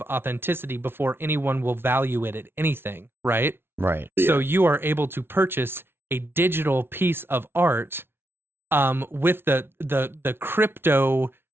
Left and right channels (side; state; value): left; late; 0.11 ms